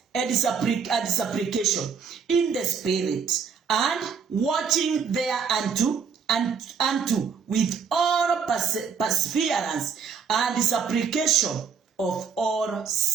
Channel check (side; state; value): left; quieter; 6.4 dB